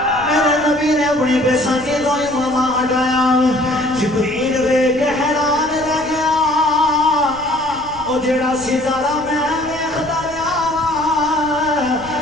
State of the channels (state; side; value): noise; left; rumble, 20 dB below the sound